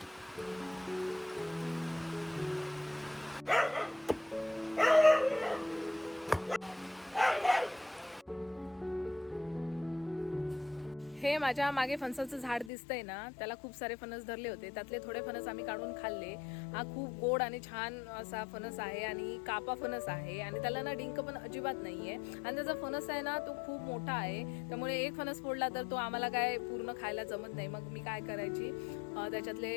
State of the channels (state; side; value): drops out; right; at 12.7 s